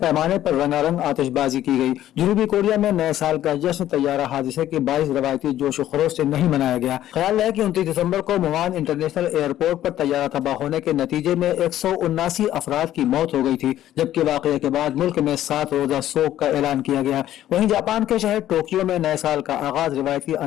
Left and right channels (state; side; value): quieter; right; 12.7 dB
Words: पर रंगारंग आतिशबाजी की गई। जनूबी कोरिया में नए साल का जश्न तैयारा हादसे के बाईस रवायती जोश खरोश से नहीं मनाया गया। ख्याल है कि 29 दिसंबर को मुआन इंटरनेशनल एयरपोर्ट पर तैयारा तबाह होने के नतीजे में 179 अफराद की मौत हो गई थी, जबकि वाकये के बाद मुल्क में 7 रोजा शोक का ऐलान किया गया। वहीं जापान के शहर टोक्यो में नए साल का आगाज रिवायती